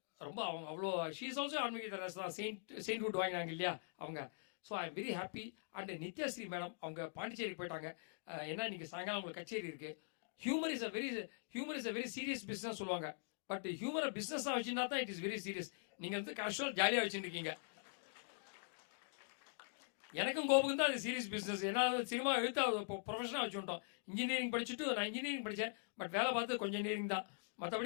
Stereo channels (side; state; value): right; silent; digital silence